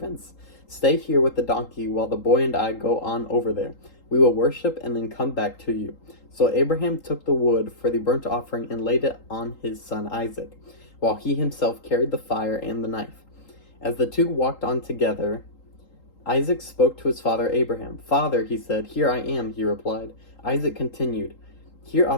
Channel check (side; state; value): right; late; 3.8 ms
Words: Stay here with the donkey while the boy and I go on over there. We will worship and then come back to you. So Abraham took the wood for the burnt offering and laid it on his son Isaac, while he himself carried the fire and the knife. As the two walked on together, Isaac spoke to his father Abraham. Father, he said. Here I am, he replied. Isaac continued, Here